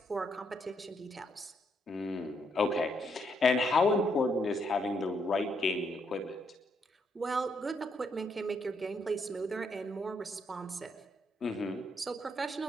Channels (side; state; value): both; normal; correlation 0.75